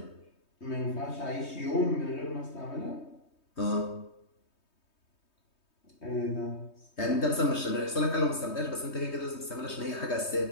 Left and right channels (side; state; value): right; late; 3.2 ms